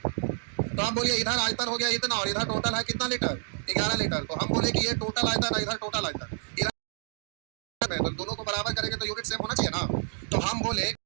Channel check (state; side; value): silent; left; 59 dB below the other